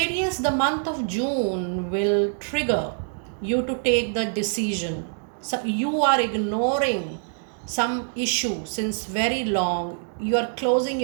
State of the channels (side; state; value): left; silent; digital silence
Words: the month of June will trigger you to take the decision. So you are ignoring some issue since very long. You are closing